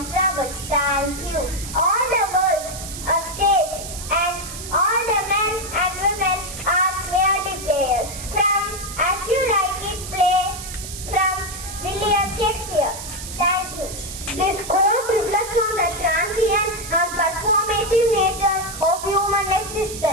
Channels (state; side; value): noise; right; hiss, 10 dB below the sound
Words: troubles. Thank you. All the worlds, a stage, and all the men and women are merely players. From As You Like It play from William Shakespeare. Thank you. This quote reflects on the transient and performative nature of human